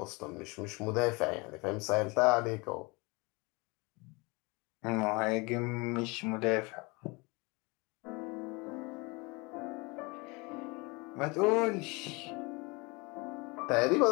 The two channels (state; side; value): quieter; right; 27.0 dB